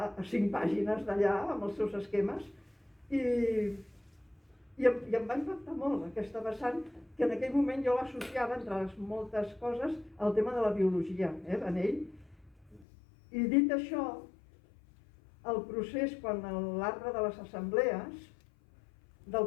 5 pàgines d'allà, amb els seus esquemes, i em va impactar molt aquesta vessant, que en aquell moment jo l'associava, entre les moltes coses, al tema de la biologia, en ell. I dit això, el procés, quan l'arbre de les assemblees,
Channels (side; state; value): right; drops out; at 12.9 s